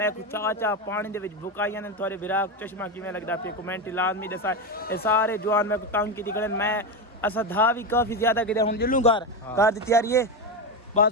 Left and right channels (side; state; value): both; normal; correlation 0.14